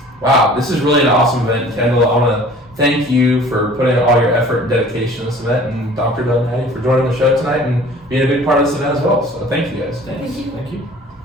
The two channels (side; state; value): both; normal; correlation 0.48